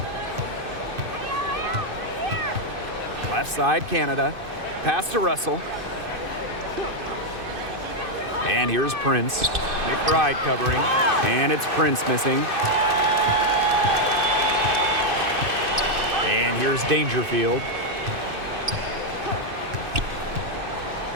Left side, Canada. Pass to Russell. And here's Prince. McBride covering. And it's Prince missing. And here's Dangerfield.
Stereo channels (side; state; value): left; late; 2.5 ms